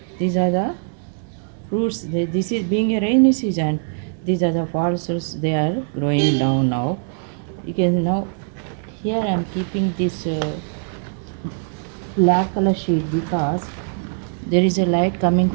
fruits. This is being a rainy season. These are the false fruits. They are growing down now. You can now here I am keeping this black color sheet because there is a light coming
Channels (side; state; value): left; silent; digital silence